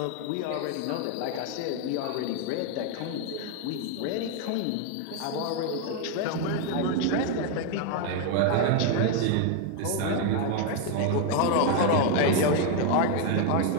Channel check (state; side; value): different; both; correlation 0.01